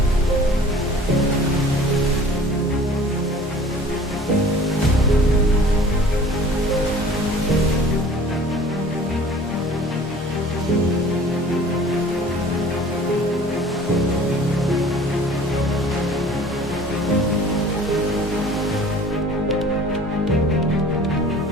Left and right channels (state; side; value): normal; both; correlation 0.47